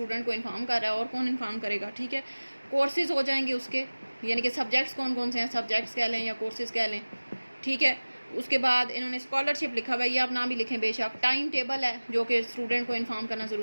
को इन्फॉर्म कर रहा है, और कौन इन्फॉर्म करेगा, ठीक है। कोर्सेज हो जाएंगे उसके, यानी कि सब्जेक्ट्स कौन कौन से हैं, सब्जेक्ट्स कह लें या कोर्सेज कह लें, ठीक है। उसके बाद इन्होंने स्कॉलरशिप लिखा हुआ है, ये आप नाम भी लिखें बेशक। टाइम टेबल है जो कि स्टूडेंट को इन्फॉर्म करना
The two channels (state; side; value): inverted; both; correlation -1.00